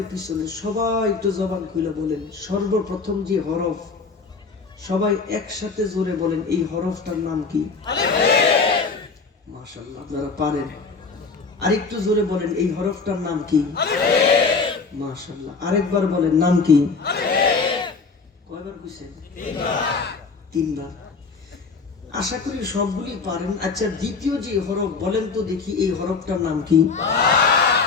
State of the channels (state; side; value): quieter; right; 4.6 dB